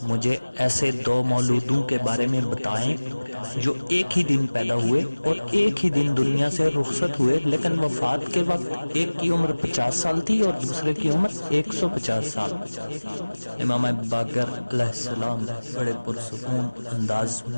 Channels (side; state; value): both; inverted; correlation -1.00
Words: مجھے ایسے دو مولودوں کے بارے میں بتائیں جو ایک ہی دن پیدا ہوئے اور ایک ہی دن دنیا سے رخصت ہوئے، لیکن وفات کے وقت ایک کی عمر 50 سال تھی اور دوسرے کی عمر 150 سال۔ امام باقر علیہ السلام بڑے پرسکون انداز